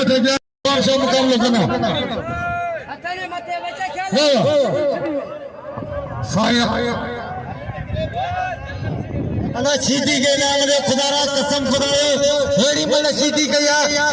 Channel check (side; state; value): both; identical; correlation 1.00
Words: थे और सब मुकाबला करना अतने मते बच्चा खेल साया अना सीधी के नाम रे खुदारा कसम खुदाए हेड़ी मन सीधी कया